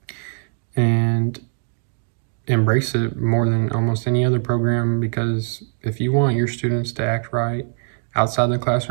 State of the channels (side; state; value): left; silent; 59 dB below the other